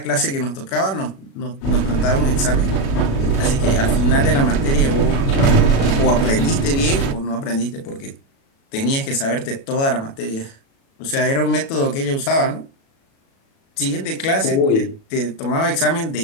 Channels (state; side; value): late; right; 36 ms